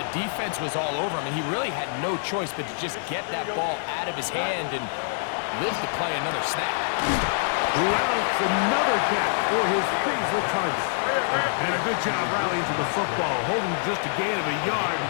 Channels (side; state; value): right; silent; digital silence